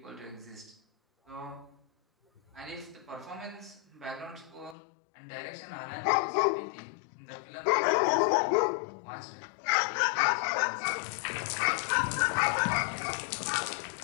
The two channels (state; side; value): drops out; right; at 4.8 s